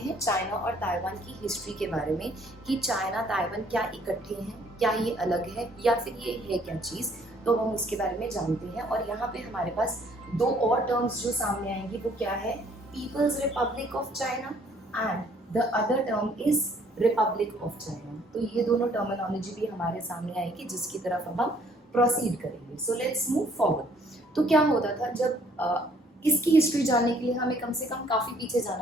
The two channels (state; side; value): normal; both; correlation 0.62